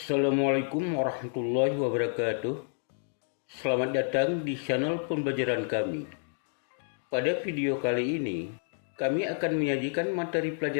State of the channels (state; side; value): silent; right; digital silence